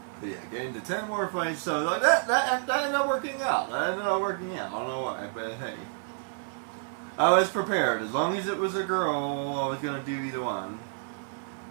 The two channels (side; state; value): left; silent; 58 dB below the other